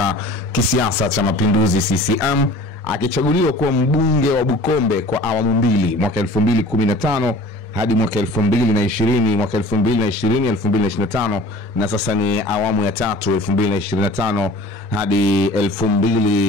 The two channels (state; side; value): normal; both; correlation 0.44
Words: kisiasa cha Mapinduzi CCM, akichaguliwa kuwa mbunge wa Bukombe kwa awamu mbili, mwaka 2015 hadi mwaka 2020, mwaka 2020-2025, na sasa ni awamu ya tatu 2025 hadi